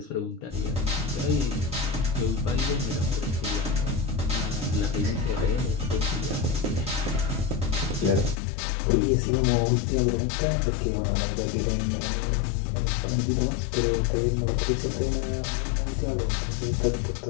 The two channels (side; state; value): right; drops out; at 8.3 s